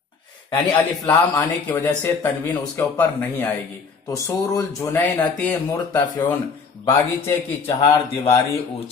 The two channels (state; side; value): quieter; right; 5.1 dB